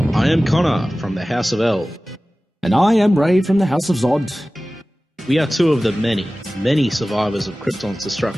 I am Connor from the House of L. And I am Ray from the House of Zod. We are two of the many, many survivors of Krypton's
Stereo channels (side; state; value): both; normal; correlation 0.97